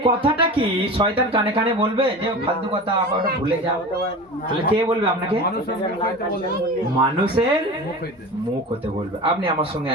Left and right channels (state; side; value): normal; both; correlation 0.32